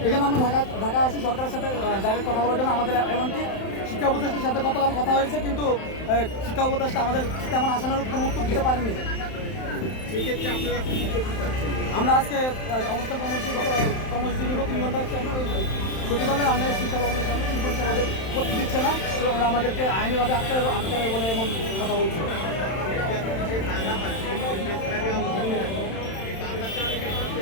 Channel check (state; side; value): late; right; 31 ms